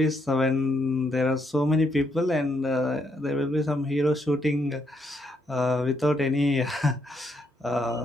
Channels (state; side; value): normal; both; correlation 0.76